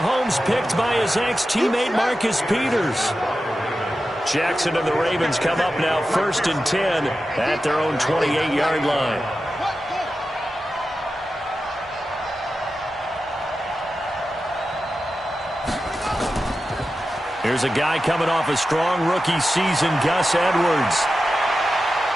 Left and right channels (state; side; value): normal; both; correlation 0.92